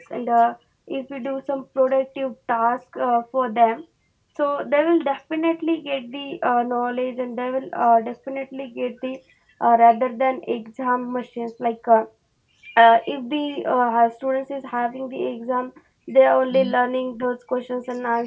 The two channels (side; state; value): both; identical; correlation 1.00